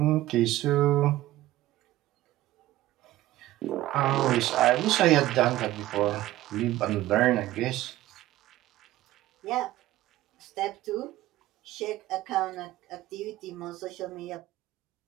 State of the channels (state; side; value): quieter; left; 15.7 dB